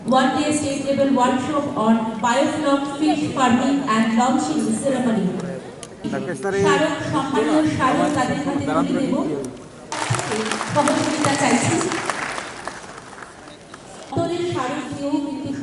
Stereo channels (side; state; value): both; identical; correlation 1.00